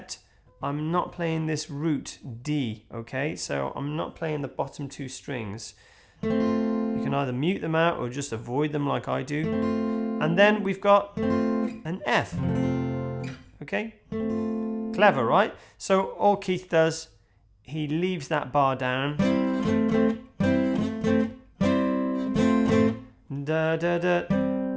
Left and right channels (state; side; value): identical; both; correlation 1.00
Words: I'm not playing this root D, okay? So I'm not playing the bottom two strings. You can either mute them out or just avoid them like I do. And then we've got an F, okay? Clever, right? So all Keith does, he leaves that bar down. Da, da, da.